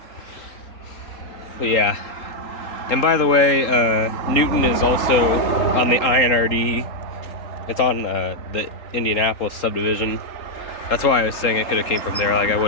But yeah. And by the way, Newton is also on the INRD. It's on the Indianapolis subdivision. That's why I was saying it could have came from there. Like, I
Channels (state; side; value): late; right; 3.7 ms